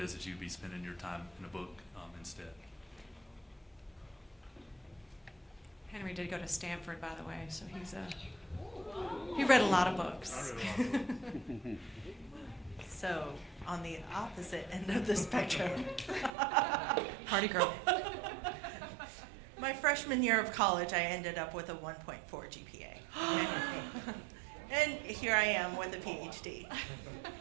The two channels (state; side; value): drops out; left; at 16.3 s